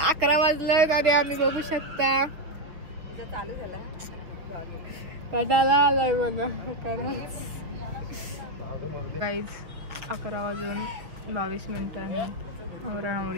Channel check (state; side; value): late; left; 6.3 ms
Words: वाजलं आणि आम्ही बघू शकता चालू झाला. कटाळा आलाय मला गाईज. 11 वाजून 22 मिनिटांनी